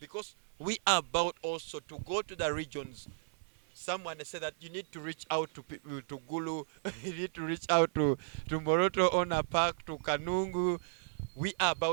we are about also to go to the regions. Someone said that you need to reach out to Gulu, you need to reach out to Moroto Ona Park, to Kanungu. We are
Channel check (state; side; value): silent; left; 55 dB below the other